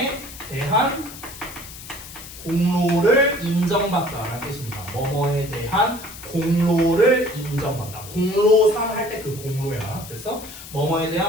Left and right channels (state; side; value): noise; left; hiss, 14 dB below the sound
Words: 대한 공로를 인정받다라는 뜻입니다. 뭐뭐에 대한 공로를 인정받다. 공로상 할 때 그 공로야. 그래서 뭐뭐에